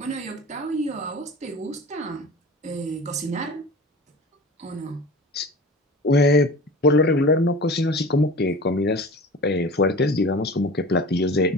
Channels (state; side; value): normal; both; correlation 0.37